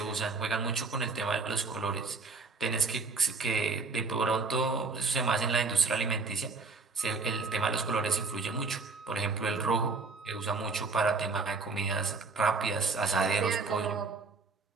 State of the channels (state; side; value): quieter; left; 4.1 dB